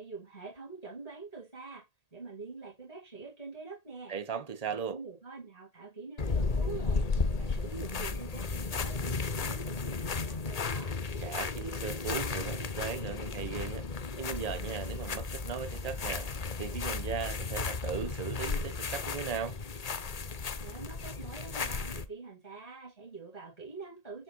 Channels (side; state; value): right; late; 1.8 ms